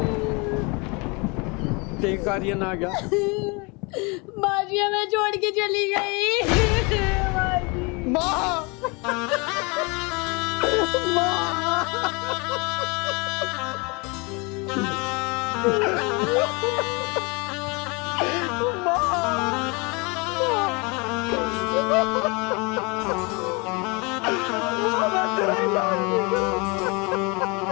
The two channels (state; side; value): quieter; right; 29.4 dB